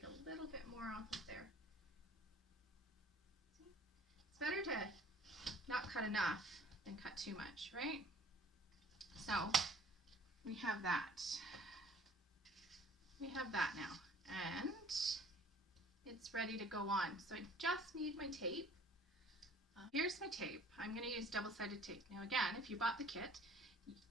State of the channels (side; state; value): both; normal; correlation 0.52